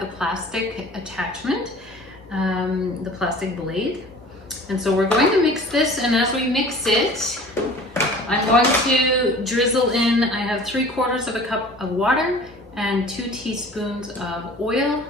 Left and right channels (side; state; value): both; normal; correlation 0.45